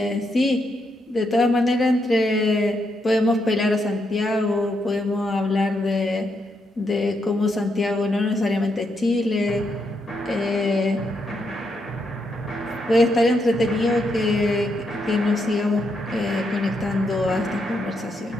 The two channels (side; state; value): both; normal; correlation 0.80